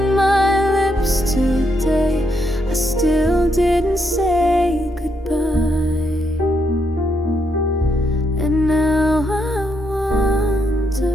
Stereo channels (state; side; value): normal; both; correlation 0.78